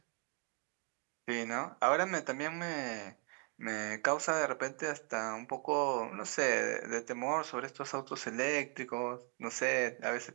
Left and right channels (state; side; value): quieter; left; 32.0 dB